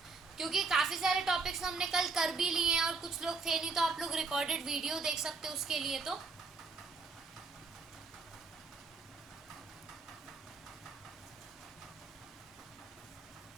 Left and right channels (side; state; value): left; quieter; 4.2 dB